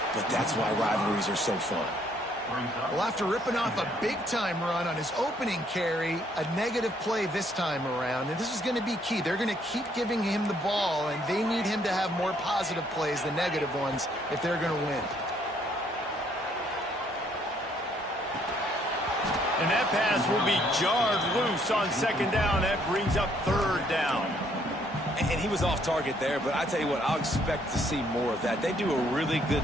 but that's why rivalries are so fun. Well, after ripping off a big-time run on his opening carry, a negative play this time around, and this is going to be key. They're going to keep giving him the ball, and they need him to have more positive plays than negative ones if they're going to win. And that pass will be jarred loose on second down. That brings up third down. And he was off target there, but I tell you what, I'll expect to see more of that. They do a really good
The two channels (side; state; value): both; normal; correlation 0.67